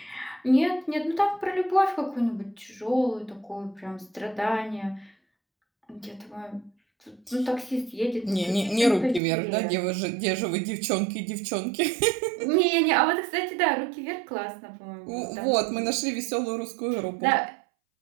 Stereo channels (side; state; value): left; drops out; at 9.2 s